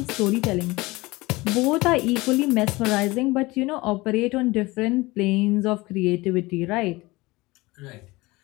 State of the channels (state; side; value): quieter; right; 21.6 dB